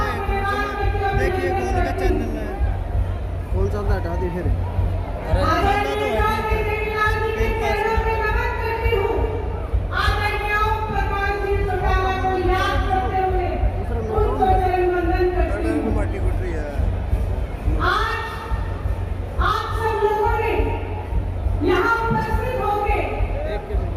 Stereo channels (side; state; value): both; identical; correlation 1.00